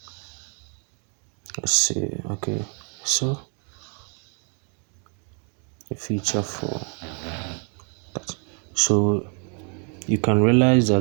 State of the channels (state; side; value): quieter; left; 38.2 dB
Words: okay, so a feature for that. So you can realize